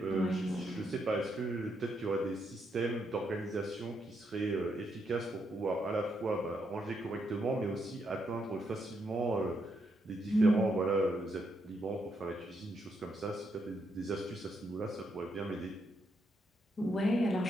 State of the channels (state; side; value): normal; both; correlation 0.79